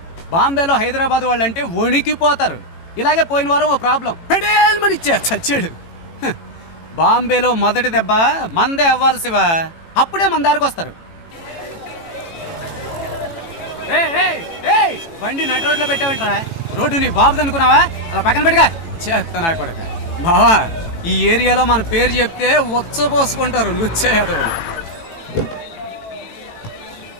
బాంబేలో హైదరాబాద్ వాళ్ళంటే వణికిపోతారు. ఇలాగే పోయిన వారం ఓ ప్రాబ్లం పెడేల్మని చచ్చాడు. బాంబేలో మొదటి దెబ్బ మందే అవ్వాలి శివ, అప్పుడే మన దారికి వస్తారు. బండి నడి రోడ్లో పెట్టావంటరా? రోడ్డు నీ బాబుది అనుకున్నావా? అలా పక్కన పెట్టుగా చేస్తా కొడక. బావా, ఈ ఏరియాలో మన పేరు చెప్తే వచ్చపోసుకుంటారు లుచ్చేయదవులు.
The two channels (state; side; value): late; right; 18 ms